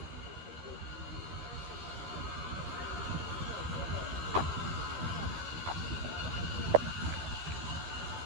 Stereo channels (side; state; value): left; late; 13 ms